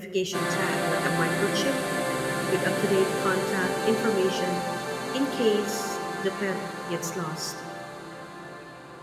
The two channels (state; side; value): identical; both; correlation 1.00